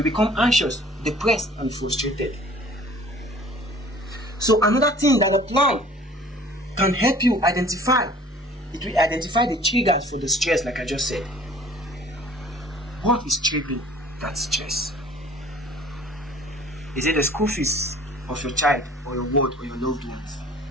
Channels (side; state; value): both; normal; correlation 0.50